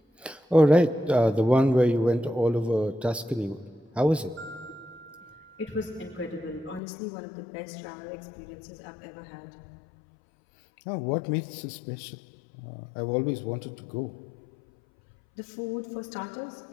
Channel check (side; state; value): right; drops out; at 6.8 s